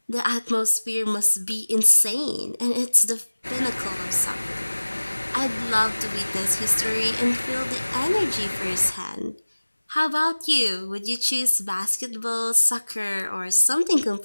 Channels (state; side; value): inverted; both; correlation -1.00